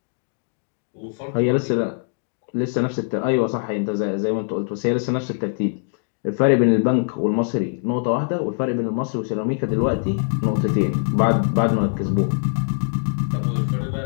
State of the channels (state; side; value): silent; right; digital silence